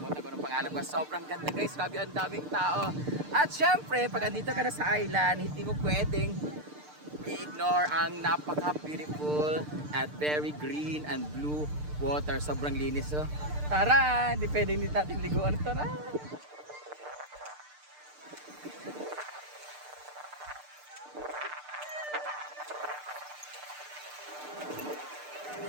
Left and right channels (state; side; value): late; left; 6.7 ms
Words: ko ng pangalan ko. Sobrang ganda guys, grabe ang daming tao. At syempre, pag andito ka na sa island, hindi mo pwedeng i-ignore ang napaka-beautiful at very green and blue water. Sobrang linis. So, tara! Hindi pwedeng hindi natin liguan. Tara!